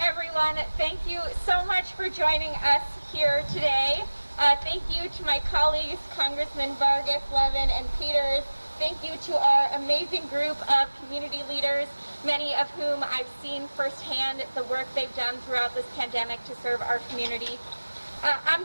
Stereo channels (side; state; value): both; inverted; correlation -1.00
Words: Thank you so much for joining us here today. Thank you to my colleagues, Congressman Vargas, Levin, and Peters. Thank you to our amazing group of community leaders, many of whom I've seen firsthand the work they've done throughout this pandemic to serve our community. I'm